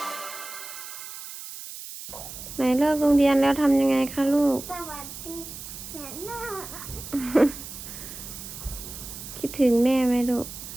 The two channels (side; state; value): right; noise; hiss, 11 dB below the sound